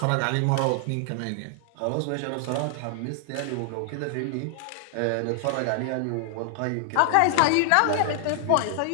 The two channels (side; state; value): both; different; correlation 0.00